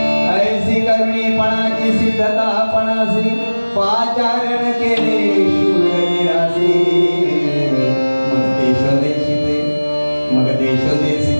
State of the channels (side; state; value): both; inverted; correlation -1.00